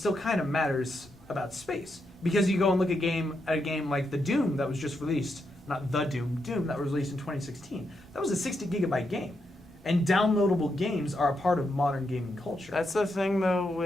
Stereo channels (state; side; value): normal; both; correlation 0.82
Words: kind of matters about space because you go and look at a game like the Doom that was just released, not the Doom that was released in 2016. That was a 60 gigabyte game, and downloadable games are a part of modern gaming culture. That's the thing, though.